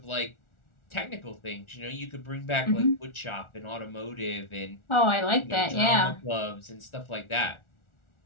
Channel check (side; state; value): right; late; 1.4 ms